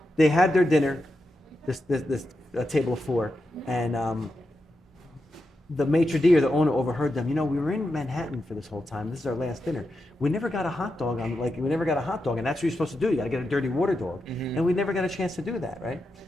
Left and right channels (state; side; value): normal; both; correlation 0.87